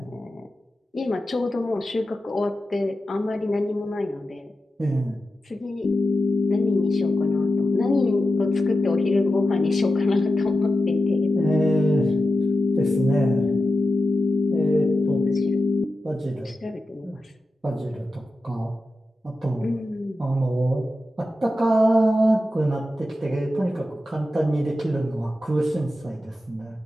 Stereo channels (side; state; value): both; normal; correlation 0.91